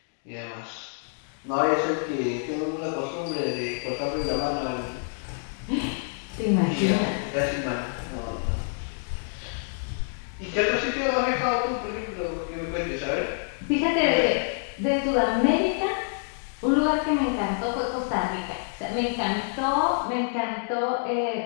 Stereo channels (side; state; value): right; silent; digital silence